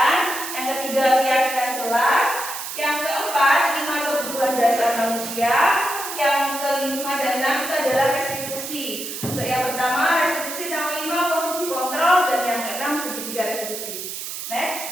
Yang ketiga keyakinan kelas. Yang keempat 5 kebutuhan dasar manusia. Yang kelima dan 6 itu adalah restitusi. Untuk yang pertama restitusi, yang kelima posisi kontrol, dan yang keenam segitiga restitusi.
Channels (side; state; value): right; noise; hiss, 7 dB below the sound